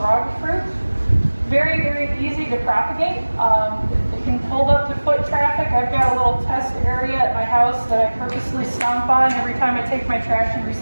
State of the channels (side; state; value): both; inverted; correlation -1.00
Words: fruit. Very, very easy to propagate. It can hold up to foot traffic. I've got a little test area at my house that I purposely stomp on every time I take my trash and